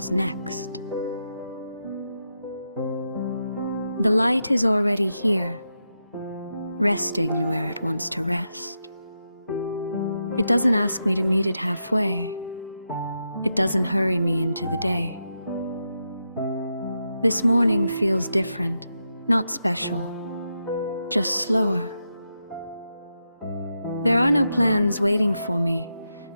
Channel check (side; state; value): both; inverted; correlation -0.86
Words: next. The light is already here, resting where it wants to rest. It doesn't ask me to meet it halfway. It doesn't hurry me into the day. This morning feels different, not special, just slower. There are no plans waiting for me,